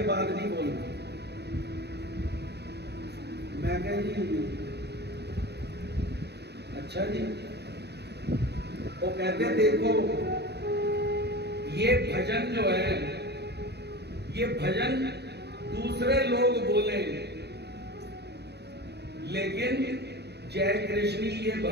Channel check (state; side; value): late; left; 0.48 ms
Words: बाद नहीं बोलना। मैं कहा जी अच्छा जी। वो कहते देखो ये भजन जो है, ये भजन दूसरे लोग बोले, लेकिन जय कृष्ण ये